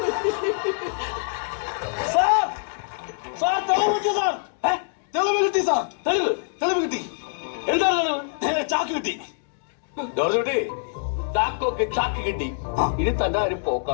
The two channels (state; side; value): silent; right; digital silence